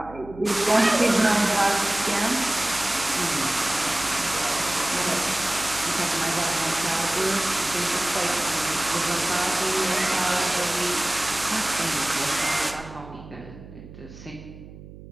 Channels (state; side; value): noise; right; hum, 17 dB below the sound